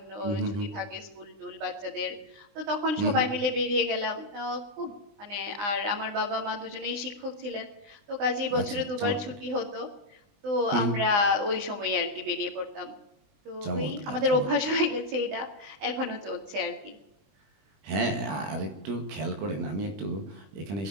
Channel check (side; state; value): left; late; 20 ms